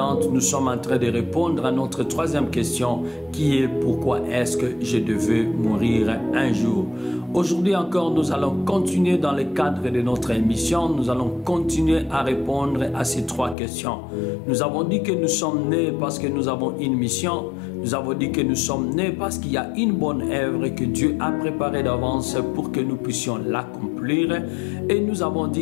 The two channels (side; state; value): right; drops out; at 13.6 s